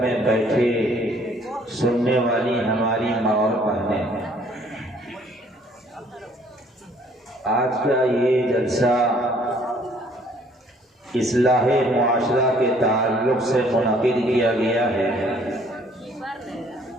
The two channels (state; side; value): normal; both; correlation 0.60